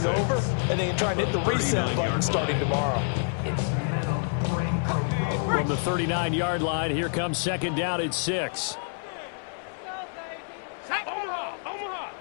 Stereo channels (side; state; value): right; silent; 60 dB below the other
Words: over, and they can try and hit the reset button starting tomorrow. From the 39-yard line, here comes second down at 6.